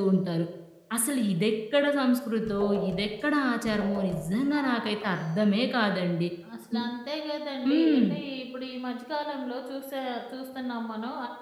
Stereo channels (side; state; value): both; identical; correlation 1.00